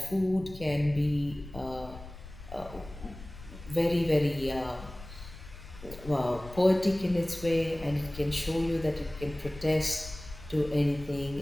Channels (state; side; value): noise; left; rumble, 15 dB below the sound